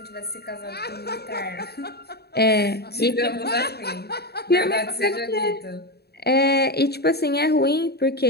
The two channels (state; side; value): late; right; 0.47 ms